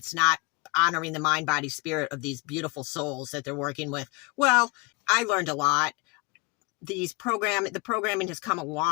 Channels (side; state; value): right; quieter; 25.3 dB